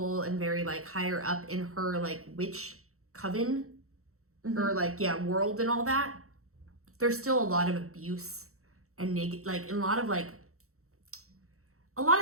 and very, like, higher up in her, like, witch coven, or, like, world and all that, there's still a lot of abuse and a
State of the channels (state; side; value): late; left; 0.64 ms